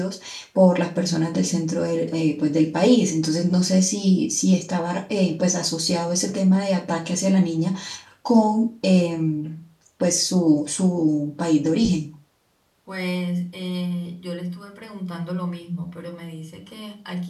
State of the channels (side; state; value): both; identical; correlation 1.00